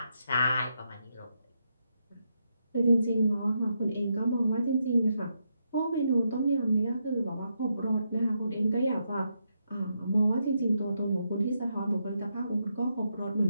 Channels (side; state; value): both; inverted; correlation -0.81